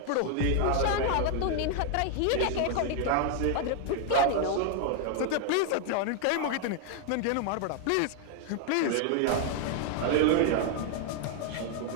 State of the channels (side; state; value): both; different; correlation 0.00